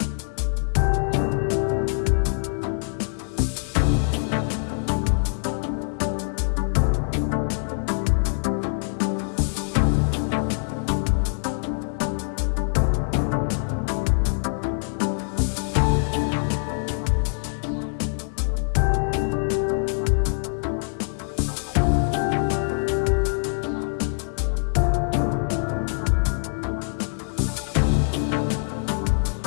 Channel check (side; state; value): right; silent; digital silence